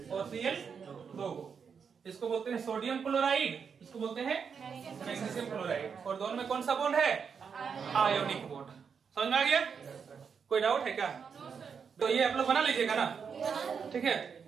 और Cl 2। इसको बोलते हैं सोडियम क्लोराइड, इसको बोलते हैं मैग्नीशियम क्लोराइड। और दोनों में कौन सा बॉन्ड है? Ionic bond. समझ में आ गया? कोई डाउट है क्या? तो ये आप लोग बना लीजिएगा ना, ठीक है?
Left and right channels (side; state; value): left; quieter; 6.4 dB